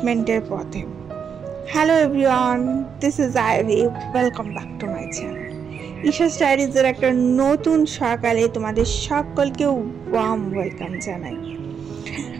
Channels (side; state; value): left; quieter; 7.0 dB